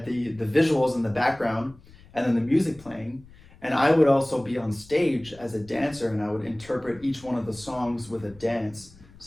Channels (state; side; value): noise; left; rumble, 24 dB below the sound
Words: the visuals in the background and then the music playing. And I would also be on stage as a dancer, and I would interpret each one of the songs with a dance.